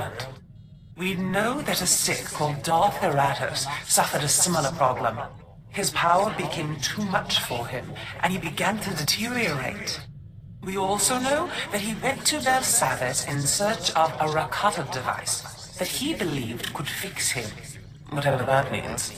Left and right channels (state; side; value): identical; both; correlation 1.00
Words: We know that a Sith called Darth Eratos suffered a similar problem. His power became too much for him, and he began to deteriorate. We also know that he went to Belsavis in search of a Rakata device that he believed could fix him, whatever that